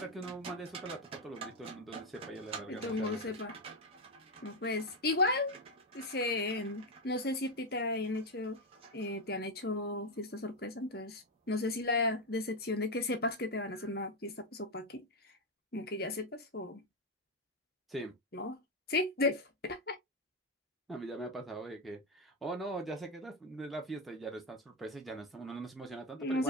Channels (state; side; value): normal; both; correlation 0.07